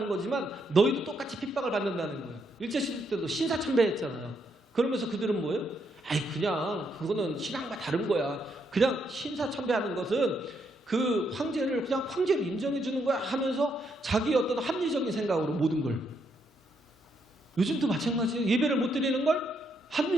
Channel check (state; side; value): normal; both; correlation 0.76